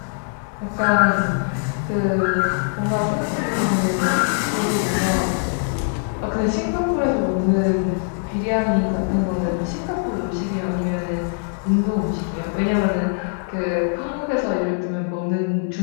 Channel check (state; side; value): silent; right; 60 dB below the other